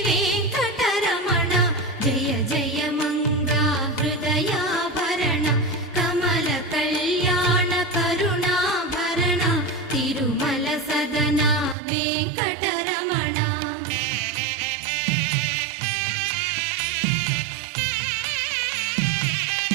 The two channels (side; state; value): left; drops out; at 11.8 s